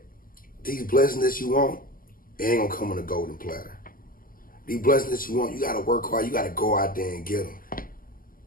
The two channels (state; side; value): late; right; 0.41 ms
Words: these blessings that you want, it ain't gonna come on a golden platter. These blessings that you want, you gotta work hard. You gotta go out there and get them.